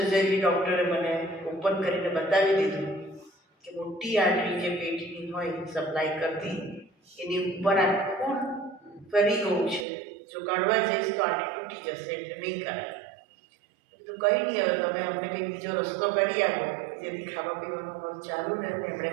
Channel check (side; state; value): left; drops out; at 9.9 s